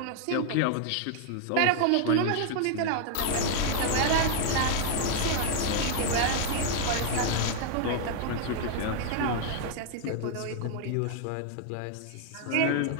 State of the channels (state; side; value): different; both; correlation 0.00